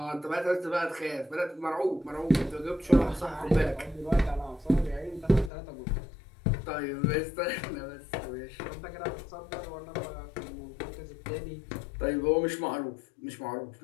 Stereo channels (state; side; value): drops out; right; at 5.5 s